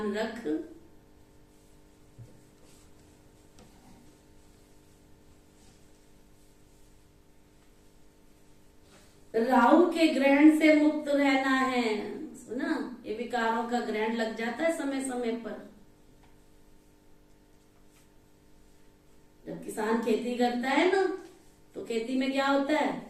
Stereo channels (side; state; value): both; identical; correlation 1.00